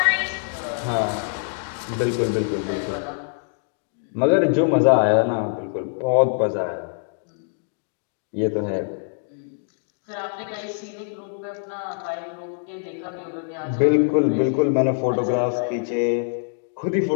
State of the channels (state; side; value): silent; right; 63 dB below the other